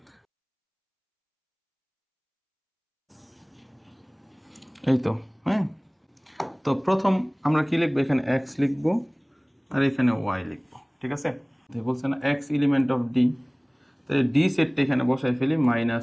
এই তো। হ্যাঁ, তো প্রথম আমরা কি লিখবো, এখানে x লিখবো আর এখানে y লিখবো। ঠিক আছে, বলছে না x এলিমেন্ট অফ ডি, তাহলে ডি সেটটা এখানে বসাই ফেলি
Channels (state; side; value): identical; both; correlation 1.00